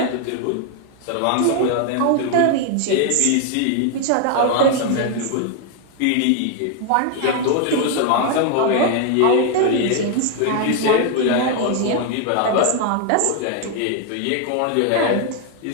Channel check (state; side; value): different; both; correlation 0.01